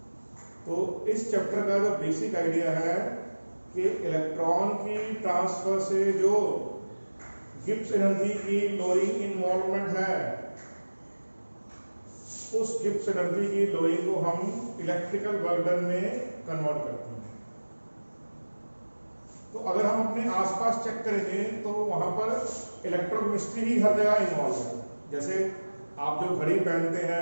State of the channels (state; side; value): inverted; both; correlation -1.00